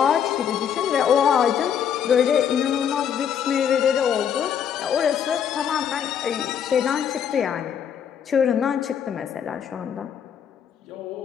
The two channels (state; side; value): quieter; right; 8.4 dB